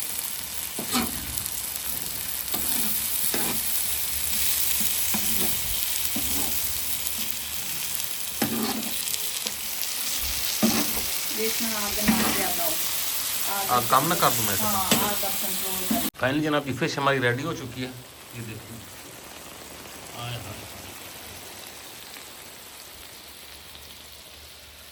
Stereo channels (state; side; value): identical; both; correlation 1.00